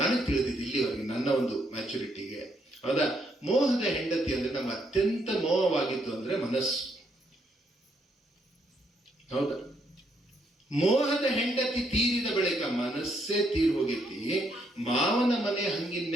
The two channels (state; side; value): normal; both; correlation 0.74